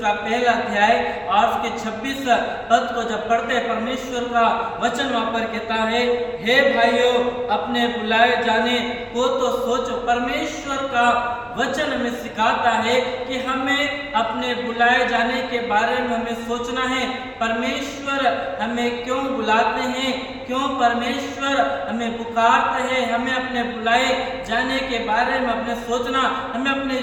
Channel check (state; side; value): identical; both; correlation 1.00